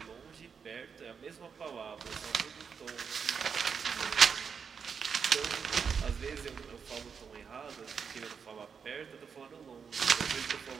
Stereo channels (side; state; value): left; quieter; 6.3 dB